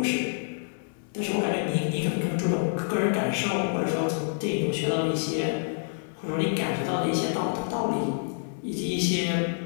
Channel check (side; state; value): right; silent; 60 dB below the other